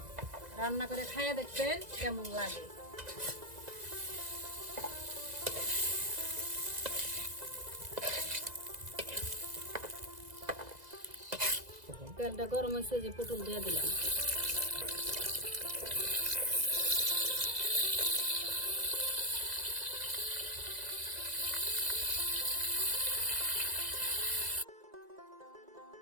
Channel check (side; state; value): left; late; 2.0 ms